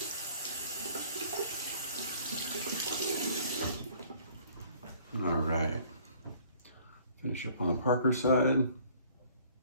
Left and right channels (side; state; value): both; inverted; correlation -0.56